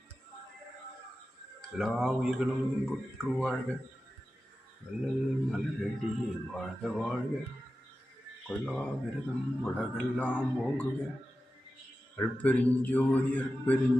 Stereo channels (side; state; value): both; normal; correlation 0.93